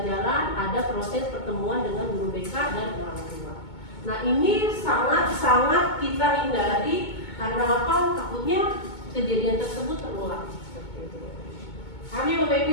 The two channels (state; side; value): late; right; 2.2 ms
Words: ada proses pertemuan dengan guru BK dan orang tua. Nah ini sangat-sangat kita hindari karena apa? Takutnya kejadian tersebut terulang. Kami Bapak